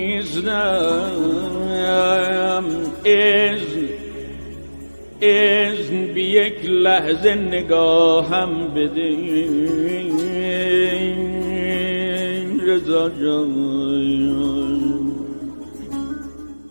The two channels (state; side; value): inverted; both; correlation -1.00